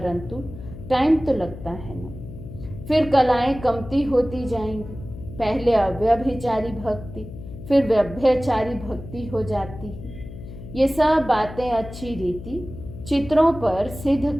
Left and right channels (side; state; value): left; noise; hum, 13 dB below the sound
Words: टाइम तो लगता है ना। फिर कलाएं कमती होती जाएंगी। पहले अव्यभिचारी भक्ति, फिर व्यभ्यचारी भक्ति हो जाती है। ये सब बातें अच्छी रीति चित्रों पर सिद्ध